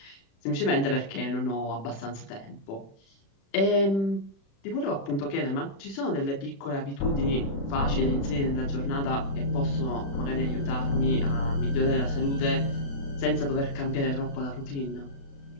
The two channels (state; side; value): late; right; 36 ms